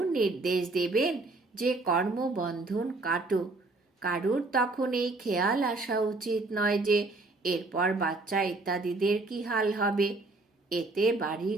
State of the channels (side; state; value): left; quieter; 3.2 dB